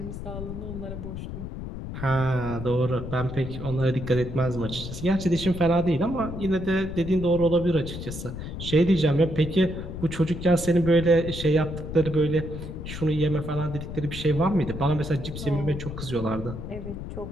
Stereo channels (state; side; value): noise; left; rumble, 8 dB below the sound